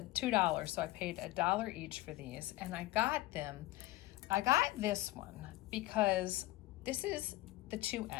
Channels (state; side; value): quieter; right; 18.1 dB